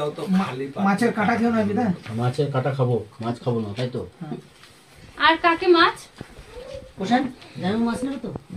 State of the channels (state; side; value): identical; both; correlation 1.00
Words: তো, খালি মাছের কাঁটা খেও না বিদা। মাছের কাটা খাবো, মাছ খাবো না, তাই তো? আর কাকে মাছ কোশান জানো মাছ নেবে তো?